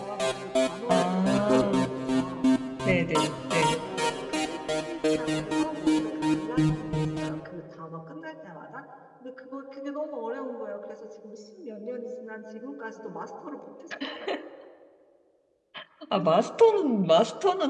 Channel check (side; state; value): both; identical; correlation 1.00